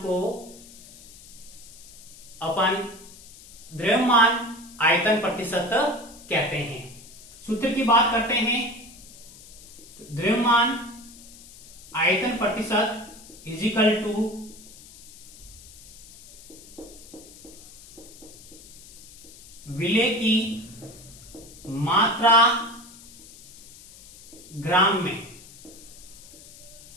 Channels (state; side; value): noise; left; hiss, 19 dB below the sound